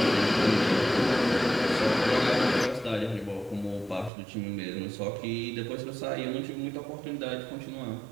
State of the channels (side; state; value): left; drops out; at 4.1 s